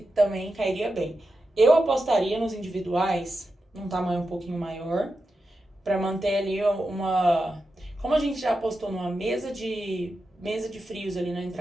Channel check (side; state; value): both; normal; correlation 0.90